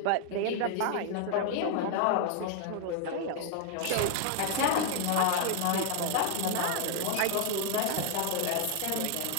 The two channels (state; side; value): different; both; correlation 0.00